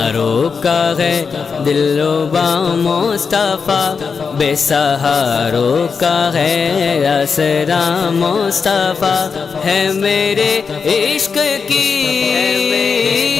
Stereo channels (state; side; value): quieter; right; 5.5 dB